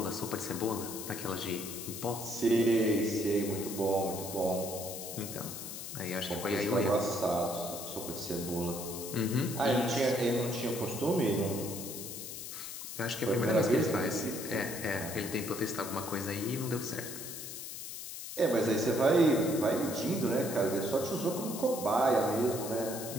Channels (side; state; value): left; noise; hiss, 8 dB below the sound